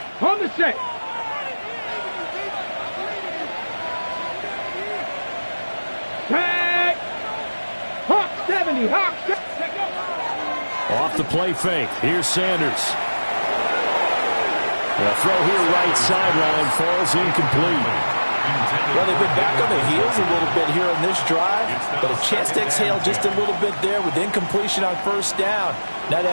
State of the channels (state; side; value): inverted; both; correlation -1.00